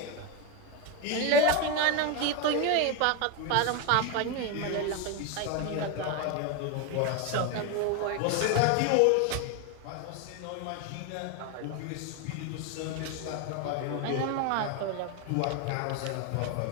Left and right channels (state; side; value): different; both; correlation 0.02